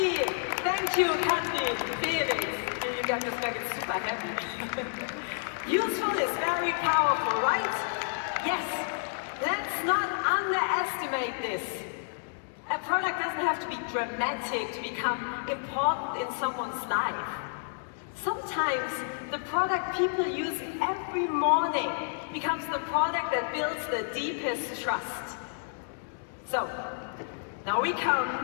Thank you, Kathy, Felix. You got this back, it's super happy. Useful is very powerful, right? Yes! Let's not underestimate this. A product doesn't have to be dramatic to become important in someone's life. Sometimes the product people use every morning becomes the product that builds the deepest trust. So, now we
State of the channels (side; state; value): right; silent; digital silence